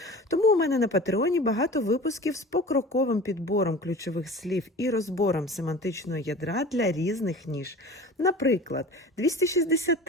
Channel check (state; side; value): normal; both; correlation 0.38